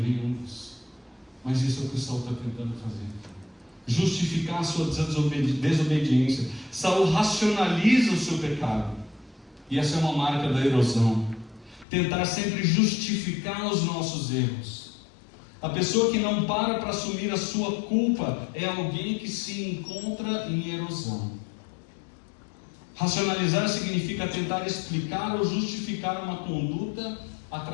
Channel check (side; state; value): right; drops out; at 11.9 s